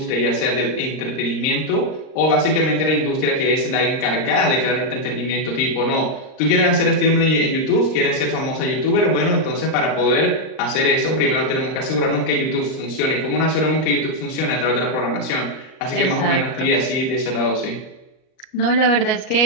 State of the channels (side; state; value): right; late; 38 ms